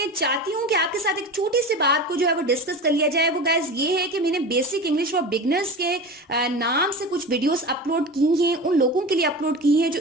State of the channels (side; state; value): both; normal; correlation 0.30